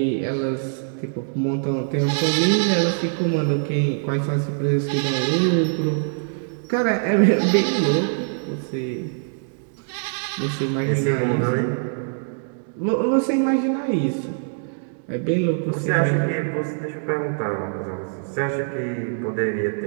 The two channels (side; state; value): left; silent; digital silence